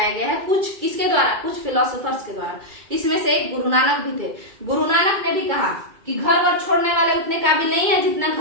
गया है, कुछ किसके द्वारा, कुछ फिलोसोफर्स के द्वारा। इसमें से एक गुरु नानक भी थे। गुरु नानक ने भी कहा कि घर वर छोड़ने वाले उतने काबिल नहीं है जितना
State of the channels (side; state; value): left; late; 2.2 ms